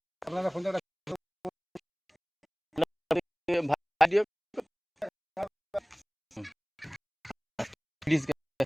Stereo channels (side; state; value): both; identical; correlation 1.00